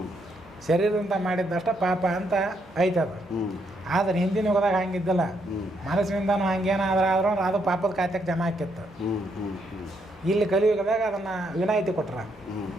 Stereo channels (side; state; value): left; noise; hum, 26 dB below the sound